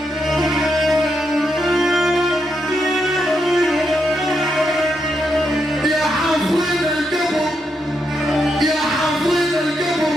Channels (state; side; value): normal; both; correlation 0.81